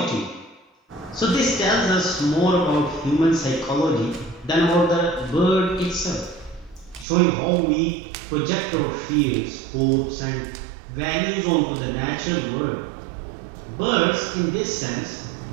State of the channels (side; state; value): left; drops out; at 7.1 s